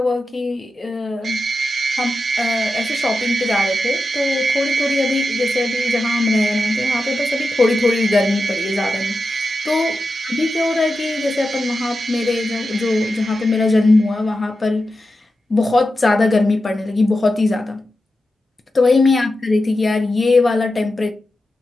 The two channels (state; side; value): normal; both; correlation 0.90